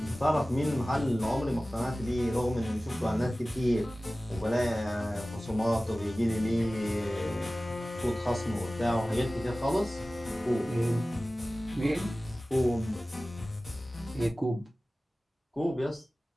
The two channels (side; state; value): both; normal; correlation 0.97